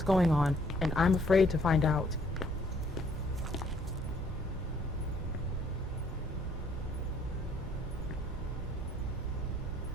going on, and I'm afraid to find out.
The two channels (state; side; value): normal; both; correlation 0.63